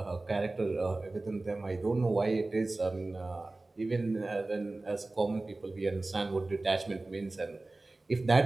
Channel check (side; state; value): left; quieter; 3.1 dB